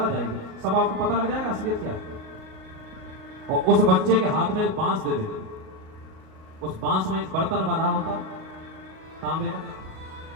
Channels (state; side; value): late; left; 38 ms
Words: आ जाएगी, सब आपको पता लग जाएगा असलियत क्या है। और उस बच्चे के हाथ में बांस दे देते, उस बांस में एक बर्तन बना होता तांबे का,